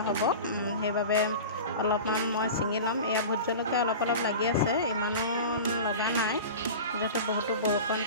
হ'ব। সেইবাবে অলপমান মই ছিঙি ল'ম। এয়া ভোট জলকীয়া অলপ লাগি আছে, ইমানো লগা নাই, যিহেতু বহুতো বৰষুণ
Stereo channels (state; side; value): inverted; both; correlation -0.33